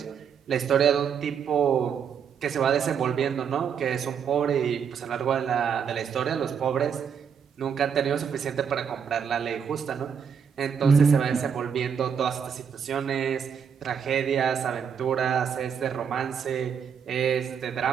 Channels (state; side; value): quieter; left; 7.2 dB